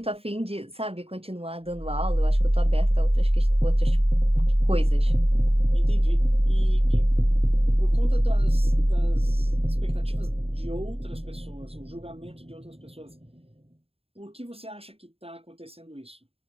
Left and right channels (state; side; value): late; left; 0.28 ms